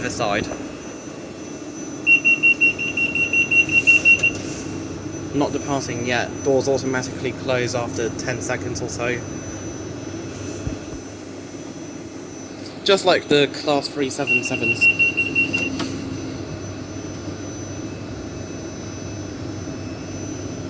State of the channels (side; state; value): both; identical; correlation 1.00